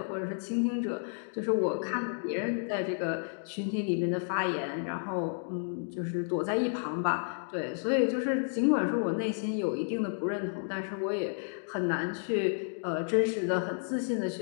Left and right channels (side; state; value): right; silent; digital silence